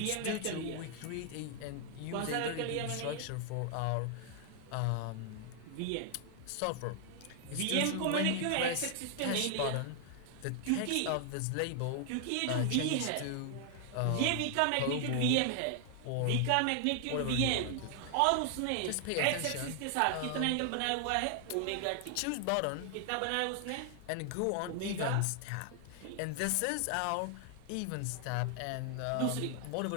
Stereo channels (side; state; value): both; different; correlation 0.00